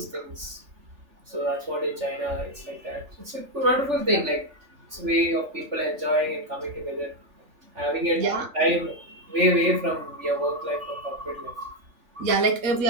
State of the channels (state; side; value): late; left; 3.4 ms